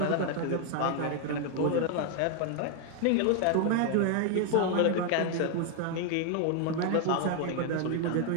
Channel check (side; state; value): both; different; correlation 0.01